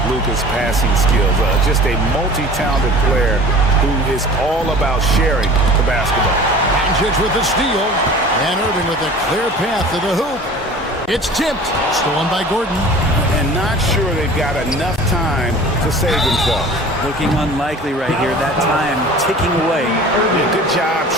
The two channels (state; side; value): normal; both; correlation 0.43